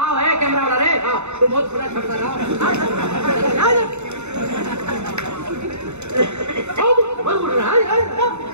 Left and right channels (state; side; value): late; left; 0.82 ms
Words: है कैमरा वाला रे, आओ तुम बहुत खुला छटका रहा